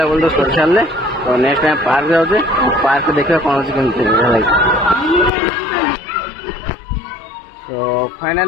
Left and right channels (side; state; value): right; drops out; at 5.3 s